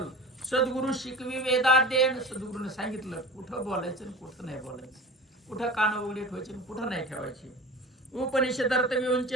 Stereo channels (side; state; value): both; normal; correlation 0.36